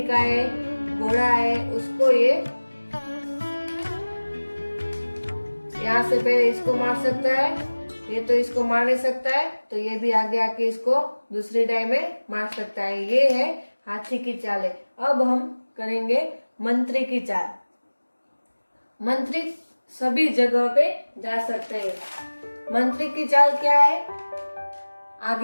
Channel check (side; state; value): both; inverted; correlation -1.00